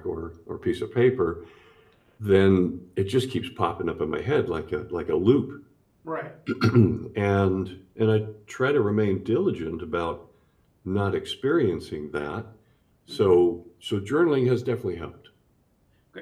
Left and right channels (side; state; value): both; identical; correlation 1.00